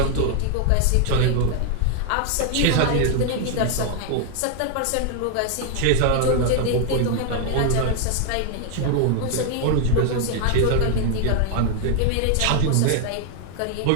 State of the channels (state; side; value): different; both; correlation 0.00